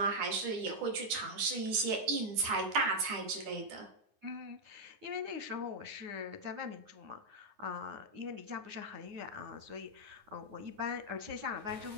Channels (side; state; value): left; late; 9.6 ms